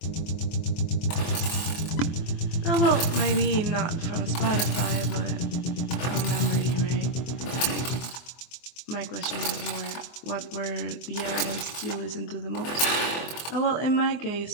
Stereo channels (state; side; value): late; right; 24 ms